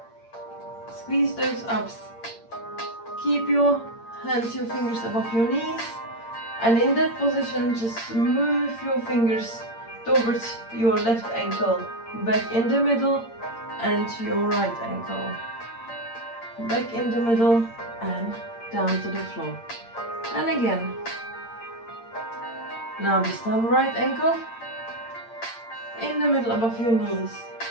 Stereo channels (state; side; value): late; right; 8.7 ms